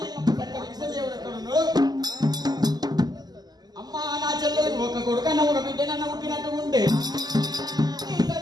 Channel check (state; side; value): late; left; 0.20 ms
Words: ఒక కొడుకన్న ఒక బిడ్డనన్న పుట్టినట్టు ఉంటే ఈ